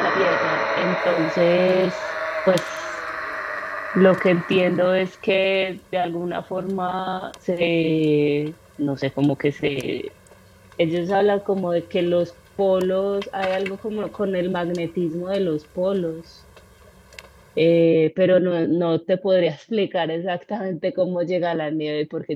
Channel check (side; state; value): both; identical; correlation 1.00